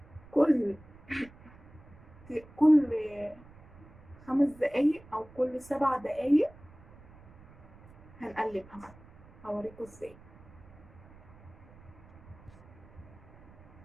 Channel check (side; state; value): right; noise; rumble, 22 dB below the sound